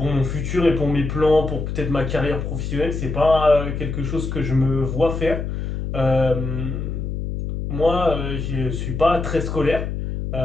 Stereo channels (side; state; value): left; noise; hum, 4 dB below the sound